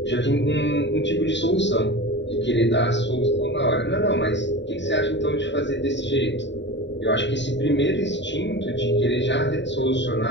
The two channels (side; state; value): right; late; 0.52 ms